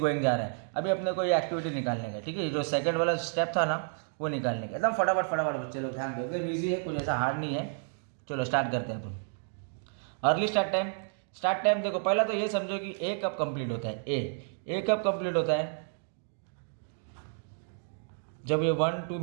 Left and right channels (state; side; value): silent; left; 57 dB below the other